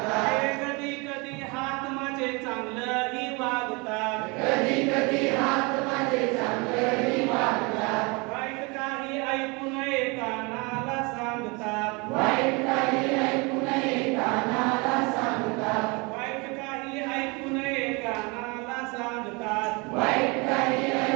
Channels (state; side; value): quieter; left; 28.4 dB